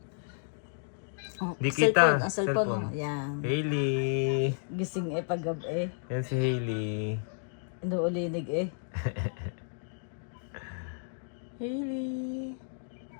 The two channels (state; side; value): silent; right; digital silence